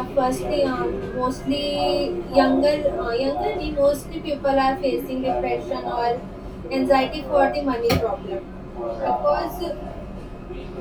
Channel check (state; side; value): identical; both; correlation 1.00